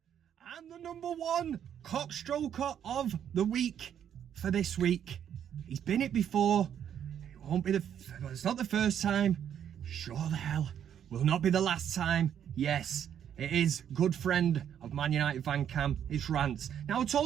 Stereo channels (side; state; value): left; quieter; 9.2 dB